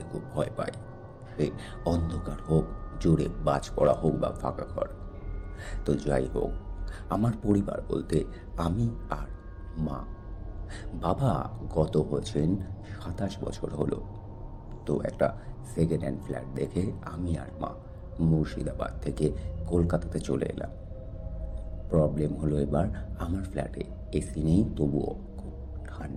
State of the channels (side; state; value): both; identical; correlation 1.00